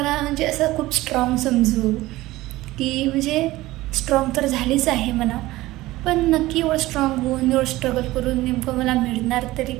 म्हणजे असं खूप स्ट्रॉंग समजू की म्हणजे स्ट्रॉंग तर झालीच आहे म्हणा, पण नक्की एवढं स्ट्रॉंग होऊन एवढं स्ट्रगल करून नेमकं मला मिळणार तरी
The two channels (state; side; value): quieter; left; 17.9 dB